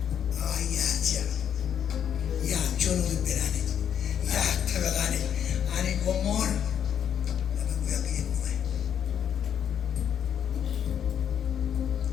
Ya Juon tu berani, ya teragani. Ani komor, apa gue yakin gue.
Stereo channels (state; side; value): quieter; right; 8.9 dB